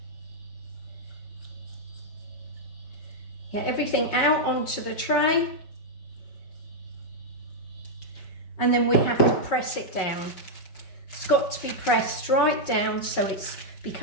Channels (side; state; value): right; late; 5.4 ms